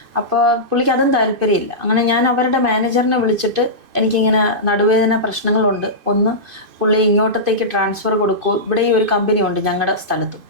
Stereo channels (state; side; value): late; left; 2.5 ms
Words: അപ്പോൾ പുള്ളിക്ക് അതും താല്പര്യമില്ല. അങ്ങനെ ഞാൻ അവരുടെ മാനേജറിനെ വിളിച്ചിട്ട് എനിക്കിങ്ങനെ നടുവേദന പ്രശ്നങ്ങളുണ്ട്, ഒന്ന് പുള്ളി ഇങ്ങോട്ടത്തേക്ക് ട്രാൻസ്ഫർ കൊടുക്കൂ, ഇവിടെ ഈ ഒരു കമ്പനി ഉണ്ട് ഞങ്ങളുടെ സ്ഥലത്തും,